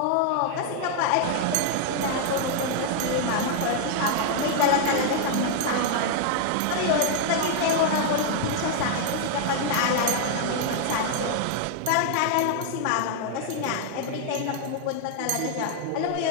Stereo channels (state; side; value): different; both; correlation 0.00